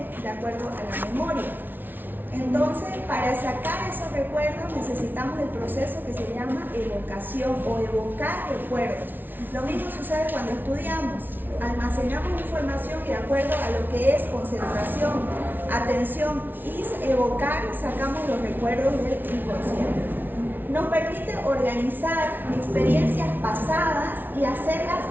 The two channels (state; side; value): late; left; 0.091 ms